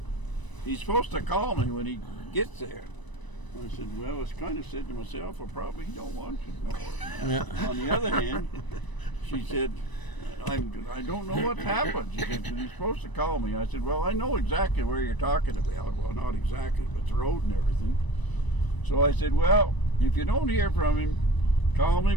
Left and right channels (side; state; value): right; late; 1.0 ms